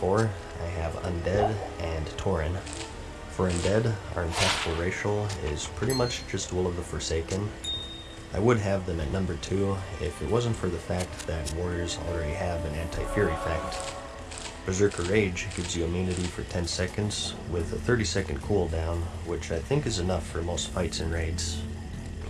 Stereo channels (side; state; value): both; identical; correlation 1.00